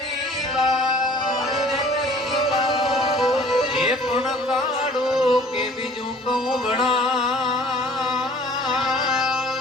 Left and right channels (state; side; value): normal; both; correlation 0.52